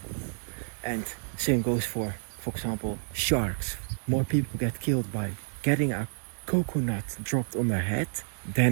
And same goes for example, sharks. More people get killed by getting a coconut dropped on their head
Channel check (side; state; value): left; silent; digital silence